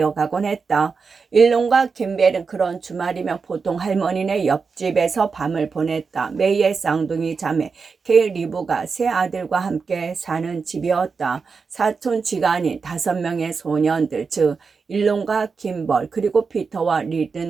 했다. 일론과 김벨은 그런 주말이면 보통 할머니네 옆집에서 밤을 보냈다. 메이의 쌍둥이 자매 케일 리브가 세 아들과 함께 사는 집이었다. 사촌 지간인 5명의 소년들, 즉 일론과 김벌 그리고 피터와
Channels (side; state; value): left; quieter; 5.1 dB